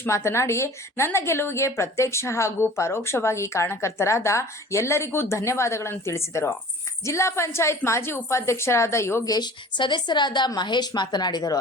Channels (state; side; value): normal; both; correlation 0.44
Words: ಮಾತನಾಡಿ, ನನ್ನ ಗೆಲುವಿಗೆ ಪ್ರತ್ಯಕ್ಷ ಹಾಗೂ ಪರೋಕ್ಷವಾಗಿ ಕಾರಣಕರ್ತರಾದ ಎಲ್ಲರಿಗೂ ಧನ್ಯವಾದಗಳನ್ನು ತಿಳಿಸಿದರು. ಜಿಲ್ಲಾ ಪಂಚಾಯತ್ ಮಾಜಿ ಉಪಾಧ್ಯಕ್ಷರಾದ ಯೋಗೇಶ್, ಸದಸ್ಯರಾದ ಮಹೇಶ್ ಮಾತನಾಡಿದರು.